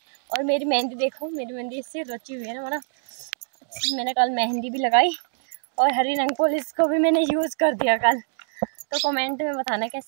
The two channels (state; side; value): silent; left; digital silence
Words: और मेरी मेहंदी देखो, मेरी मेहंदी इससे रची हुई है ना, मैंने कल मेहंदी भी लगाई और हरी रंग पुलिस को भी मैंने यूज़ कर दिया कल। तो कमेंट में बताना